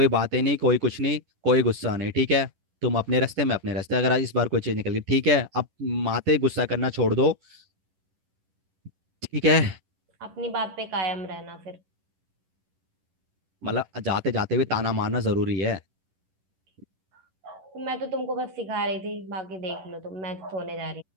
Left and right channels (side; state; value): left; late; 11 ms